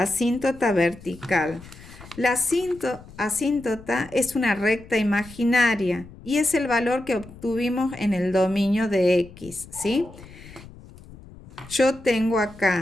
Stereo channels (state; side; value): noise; left; rumble, 19 dB below the sound